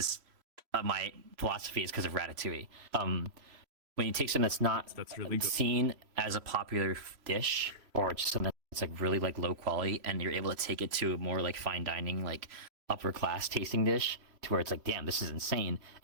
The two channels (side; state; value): left; late; 3.0 ms